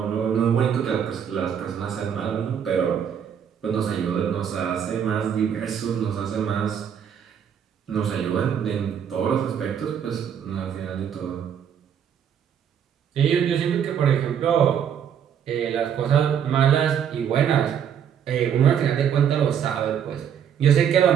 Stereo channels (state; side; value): quieter; left; 8.4 dB